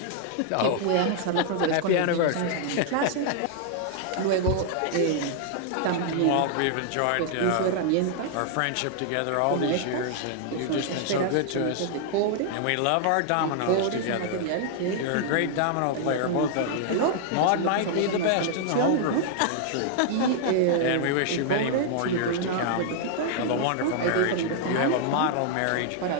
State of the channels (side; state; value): both; different; correlation -0.01